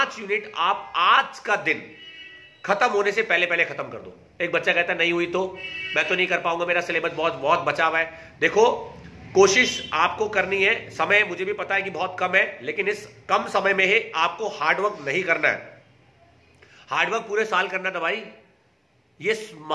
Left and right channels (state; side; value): identical; both; correlation 1.00